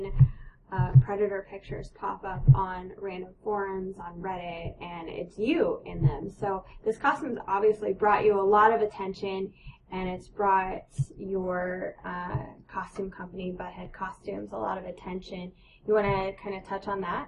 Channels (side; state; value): both; identical; correlation 1.00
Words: Predator pictures pop up on random forums, on Reddit, and it's you in them. So this costume's obviously brought you a lot of attention, and it's brought your costume company, Butthead Costumes, a lot of attention. You want to kind of touch on that?